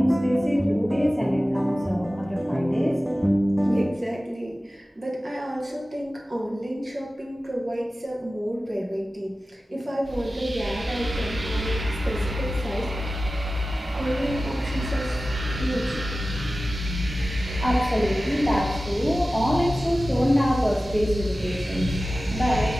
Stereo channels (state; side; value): normal; both; correlation 0.95